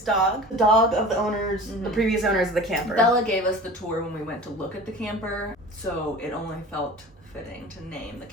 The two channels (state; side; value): normal; both; correlation 0.38